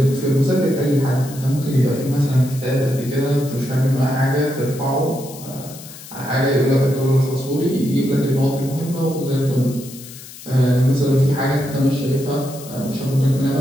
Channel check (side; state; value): left; noise; hiss, 16 dB below the sound